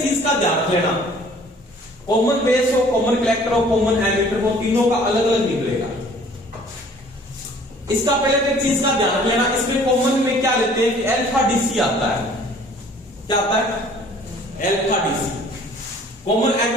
चीज का ध्यान रख लेना, कॉमन बेस हो, कॉमन कलेक्टर हो, कॉमन एमीटर हो, तीनों का अलग अलग निकलेगा। इसका पहले तो एक चीज का ध्यान रख लेना, इसमें कॉमन में क्या लेते हैं कि अल्फा डीसी आता है, क्या आता है, अल्फा डीसी। कॉमन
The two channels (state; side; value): normal; both; correlation 0.53